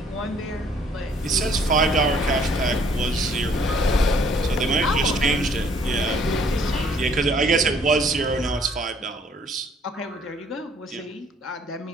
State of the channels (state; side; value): normal; both; correlation 0.61